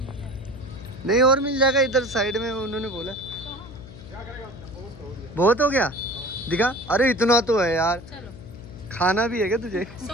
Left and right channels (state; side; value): noise; left; hum, 16 dB below the sound